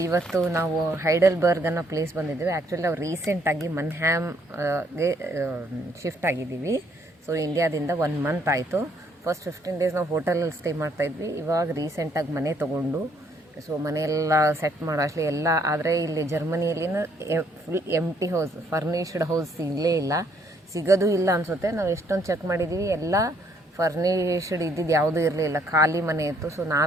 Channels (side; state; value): both; normal; correlation 0.68